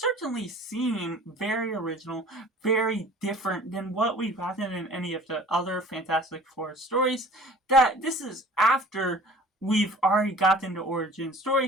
seem very original, very different than what we've gotten in any of the other Fantastic Four stories, that this is after we've already gotten the origin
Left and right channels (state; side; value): normal; both; correlation 0.46